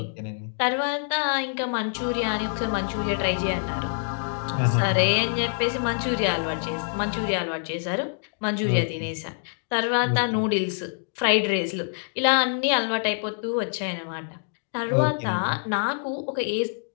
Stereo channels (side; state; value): right; silent; digital silence